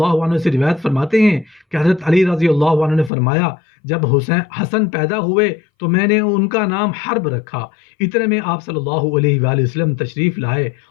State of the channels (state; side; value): drops out; right; at 3.1 s